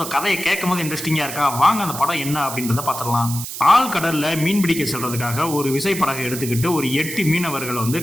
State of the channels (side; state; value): right; noise; hiss, 8 dB below the sound